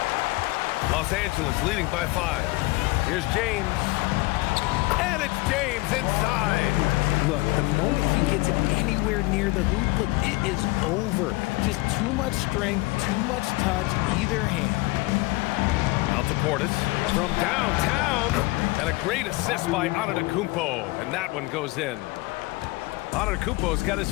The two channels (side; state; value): right; quieter; 22.0 dB